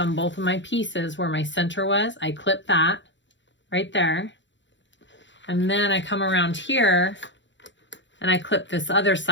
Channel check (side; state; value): right; late; 0.54 ms